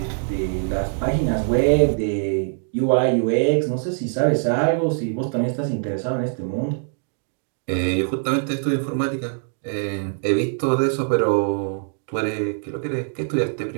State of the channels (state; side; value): silent; left; digital silence